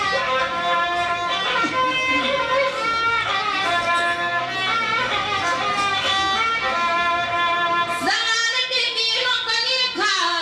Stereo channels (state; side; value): identical; both; correlation 1.00